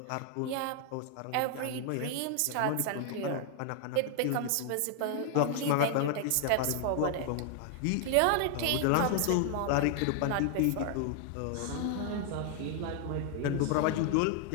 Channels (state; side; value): different; both; correlation 0.00